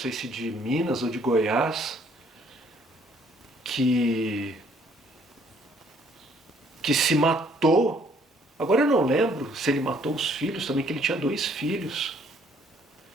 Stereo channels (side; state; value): both; normal; correlation 0.64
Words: se de Minas ou de Goiás, que se matou. Agora eu não lembro se ele matou os filhos também, que ele tinha 2 filhos.